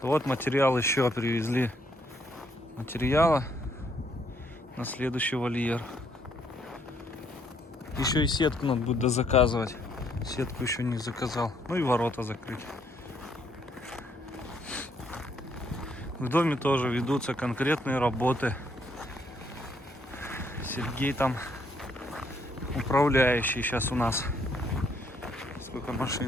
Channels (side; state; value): both; normal; correlation 0.70